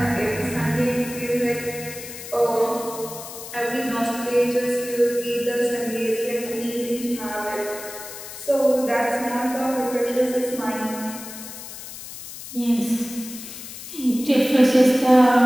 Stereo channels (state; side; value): noise; left; hiss, 12 dB below the sound